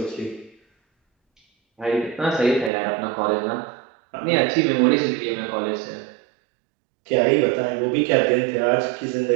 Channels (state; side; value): drops out; left; at 2.7 s